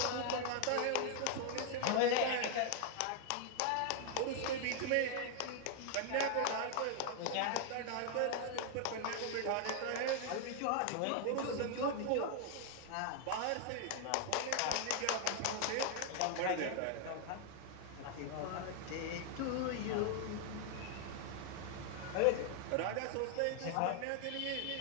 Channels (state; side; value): different; both; correlation 0.00